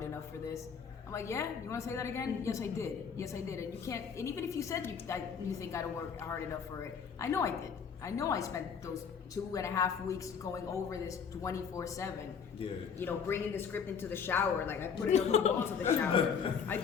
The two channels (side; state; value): right; quieter; 6.6 dB